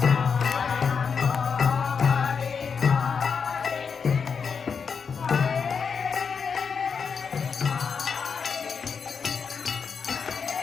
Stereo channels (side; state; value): right; quieter; 6.0 dB